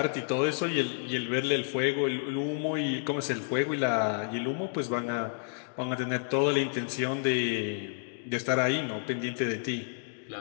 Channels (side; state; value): right; silent; digital silence